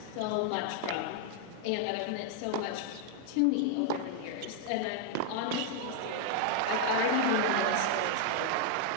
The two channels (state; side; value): different; both; correlation 0.00